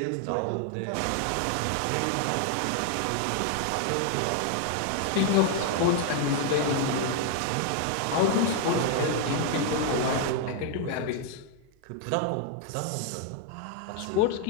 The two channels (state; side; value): different; both; correlation 0.00